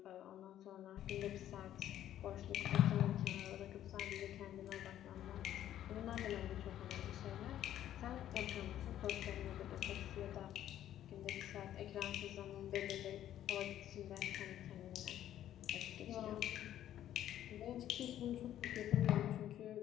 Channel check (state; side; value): quieter; right; 11.8 dB